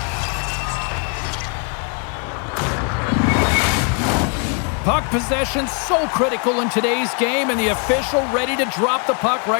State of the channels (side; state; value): right; quieter; 37.9 dB